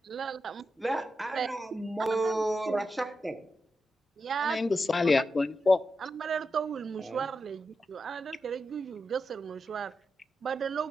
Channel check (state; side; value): normal; both; correlation 0.88